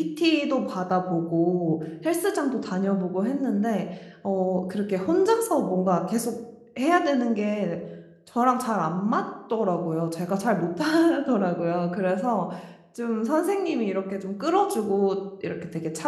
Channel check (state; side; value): identical; both; correlation 1.00